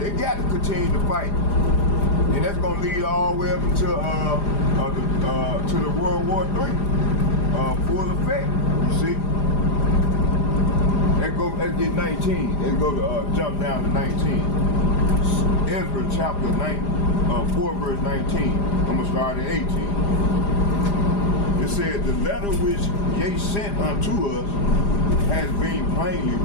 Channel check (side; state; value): right; late; 4.9 ms